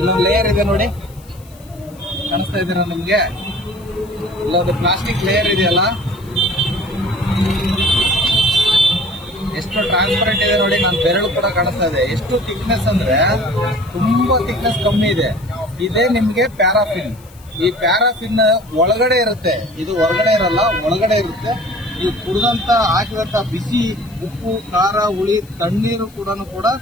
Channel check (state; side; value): noise; left; hiss, 26 dB below the sound